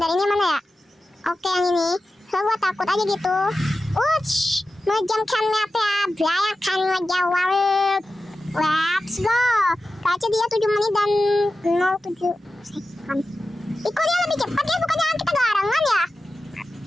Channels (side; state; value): both; normal; correlation 0.93